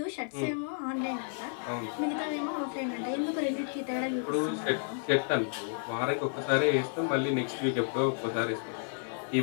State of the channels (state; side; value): silent; right; 57 dB below the other